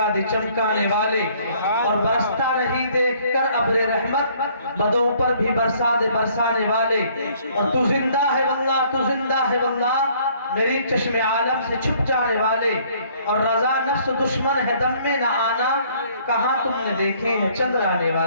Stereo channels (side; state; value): both; inverted; correlation -0.61